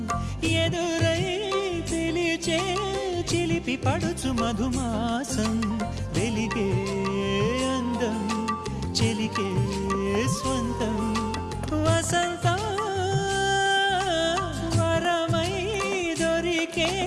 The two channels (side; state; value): both; identical; correlation 1.00